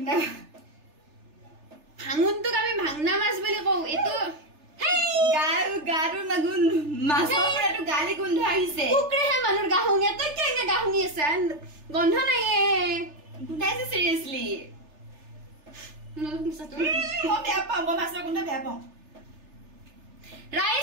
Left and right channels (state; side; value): late; left; 3.3 ms